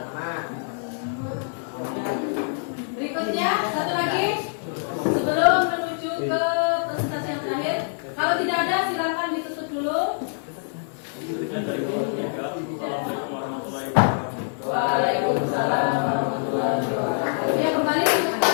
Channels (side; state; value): right; silent; digital silence